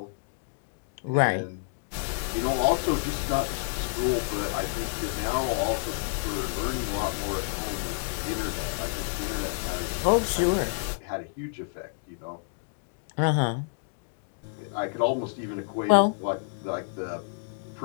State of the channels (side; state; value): right; silent; digital silence